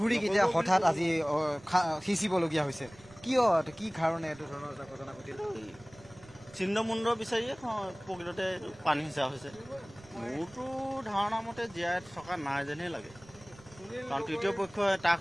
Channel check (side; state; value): right; noise; rumble, 24 dB below the sound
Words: হঠাৎ আজি সিঁচিবলগীয়া হৈছে, কিয়, কি কাৰণে এইটো ধৰণৰ এটা ঘটনা ঘটিল? চিহ্নমুণ্ড বিচাৰিয়ে প্ৰকৃততে পানী সিঁচা হৈছে। মোৰতো ধাৰণা মতে জীয়াই থকা নাই যেনহে লাগে। কাৰণ তৃতীয় পক্ষই